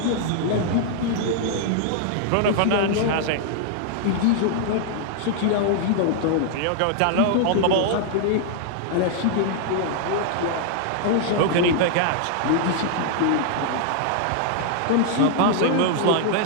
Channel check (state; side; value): different; both; correlation -0.01